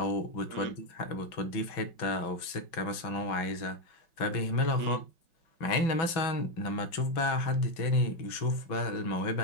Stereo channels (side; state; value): right; late; 6.0 ms